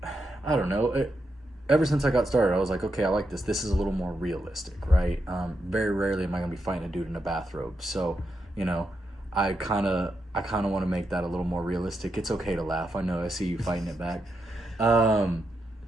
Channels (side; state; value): both; normal; correlation 0.84